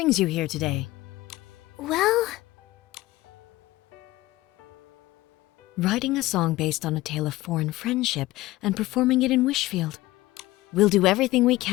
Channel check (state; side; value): quieter; right; 18.0 dB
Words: you here today? Well, Writing a song based on a tale of foreign friendship and performing it in Wishfield. We'll do everything we